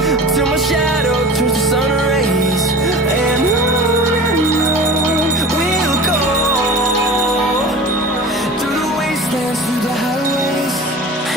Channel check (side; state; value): both; normal; correlation 0.36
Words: till my shadow turns to sun rays, and on we'll go. Through the wastelands, through the highways,